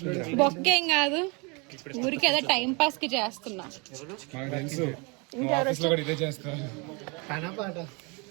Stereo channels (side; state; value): left; quieter; 30.5 dB